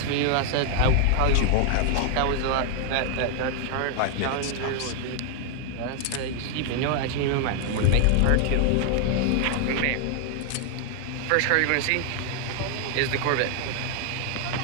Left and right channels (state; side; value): different; both; correlation 0.00